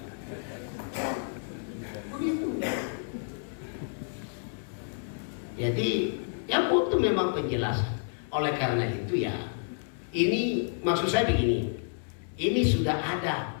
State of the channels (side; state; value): right; silent; 58 dB below the other